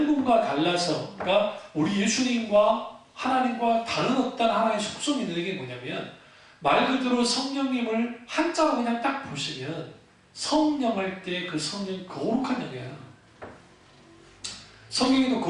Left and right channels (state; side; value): identical; both; correlation 1.00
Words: 분과 달라서 그러니까 우리 예수님과 하나님과 다른 어떤 하나의 속성이 있는 게 뭐냐면 말 그대로 성령님을 한자로 그냥 딱 보시면 성령 할 때 그 성령이 거룩한 영이에요. 성경에도